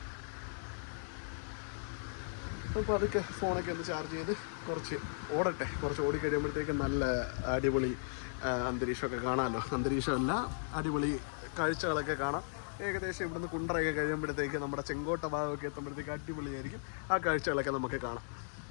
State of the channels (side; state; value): right; silent; digital silence